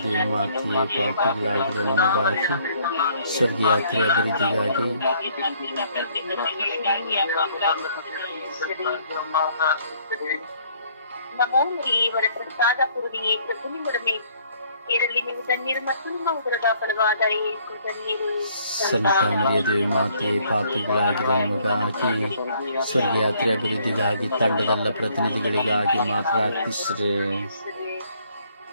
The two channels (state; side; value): inverted; both; correlation -0.63